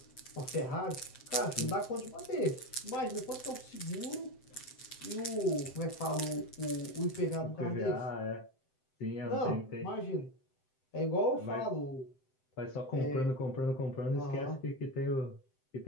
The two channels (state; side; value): late; right; 7.7 ms